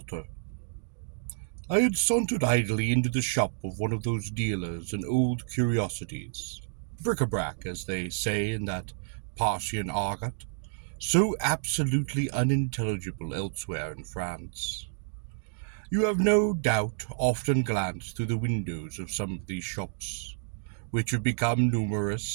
I had sauntered idly into the shop of one of those dealers in old curiosities, bric-a-brac, as they say in that Parthian argot, so absolutely unintelligible elsewhere in France. You have no doubt often glanced through the windows of some of these shops, which have become numerous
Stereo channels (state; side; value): silent; left; digital silence